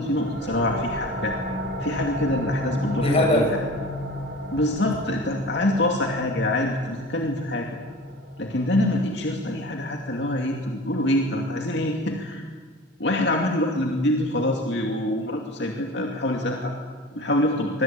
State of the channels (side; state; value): both; normal; correlation 0.38